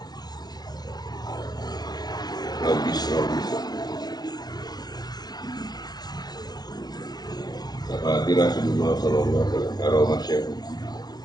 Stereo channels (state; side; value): late; right; 0.19 ms